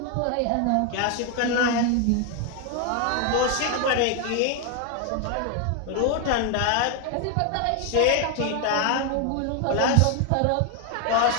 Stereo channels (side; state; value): both; different; correlation 0.01